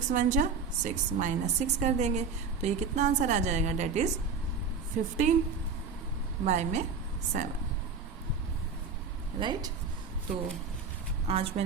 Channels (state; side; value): quieter; left; 5.2 dB